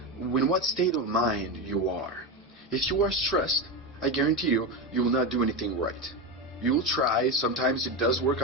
In what state of mind you are. If you are stressed, I guarantee you, you will not do anything right. You will try, sometimes it does work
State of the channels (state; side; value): normal; both; correlation 0.16